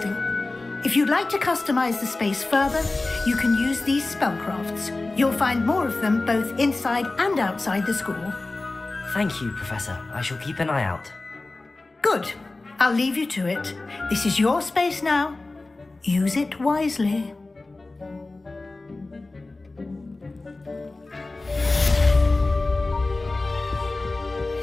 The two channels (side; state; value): right; quieter; 3.2 dB